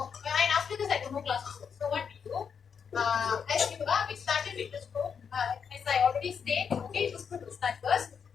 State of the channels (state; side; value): quieter; right; 6.7 dB